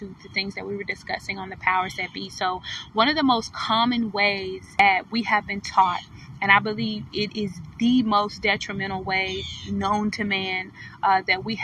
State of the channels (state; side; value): identical; both; correlation 1.00